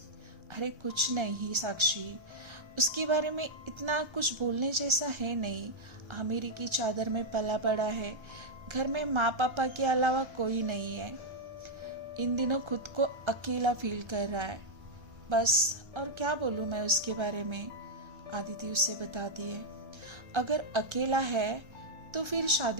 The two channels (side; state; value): left; late; 1.3 ms